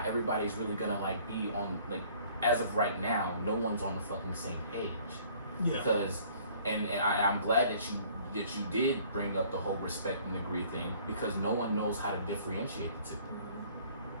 everybody is really gonna like be on, like, as of right now, no one's on the fucking same page. Yeah. Because, and I'm glad that you did bring up the whole respect and agree thing, because no one knows how to differentiate the two.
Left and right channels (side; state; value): both; inverted; correlation -0.56